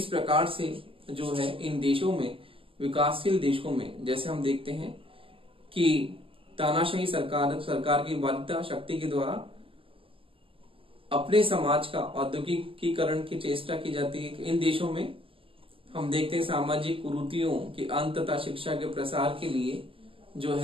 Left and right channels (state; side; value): late; left; 0.26 ms